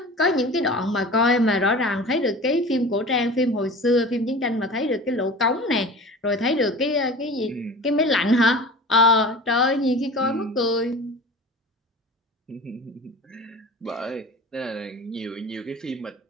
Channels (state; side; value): normal; both; correlation 0.37